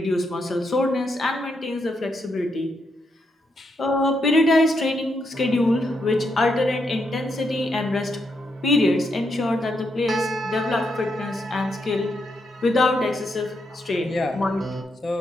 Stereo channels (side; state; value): both; normal; correlation 0.80